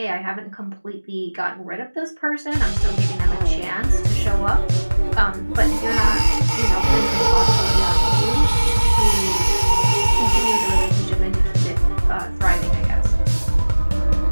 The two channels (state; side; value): inverted; both; correlation -1.00